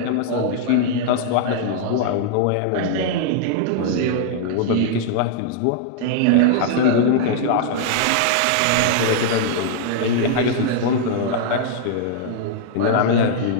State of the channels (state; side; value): different; both; correlation -0.01